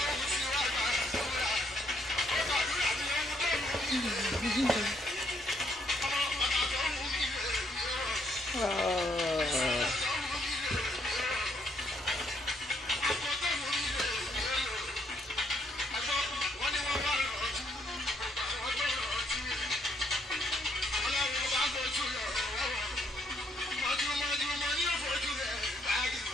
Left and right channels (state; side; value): normal; both; correlation 0.71